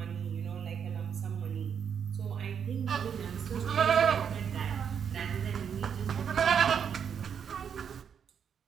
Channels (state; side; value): quieter; left; 7.6 dB